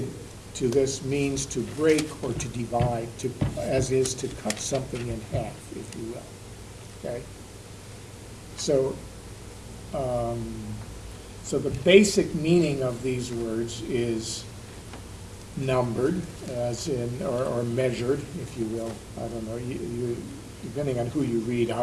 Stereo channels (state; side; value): identical; both; correlation 1.00